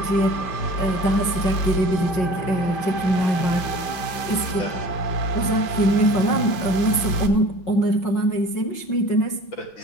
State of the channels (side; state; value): right; late; 5.5 ms